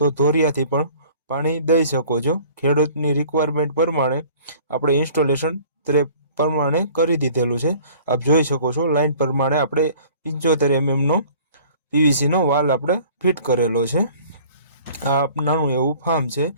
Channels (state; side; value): inverted; both; correlation -0.50